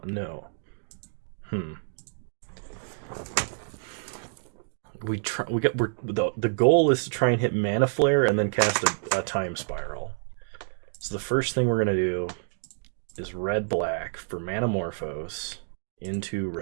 No. The goal is to try and hit Mana Flare and then cast a Time Spiral. So the first thing we're gonna do is red-black for Manamorphose into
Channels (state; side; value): silent; left; digital silence